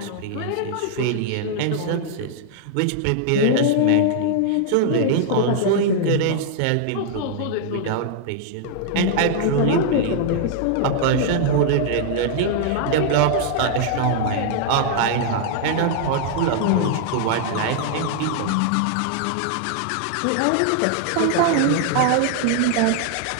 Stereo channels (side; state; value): both; different; correlation -0.01